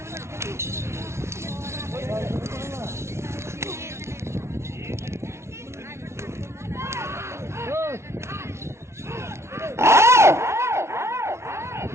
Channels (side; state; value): left; late; 0.13 ms